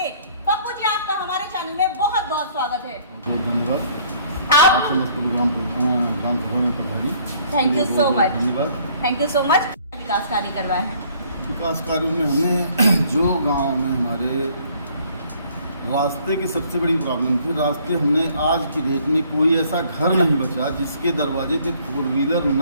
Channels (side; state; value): both; inverted; correlation -0.60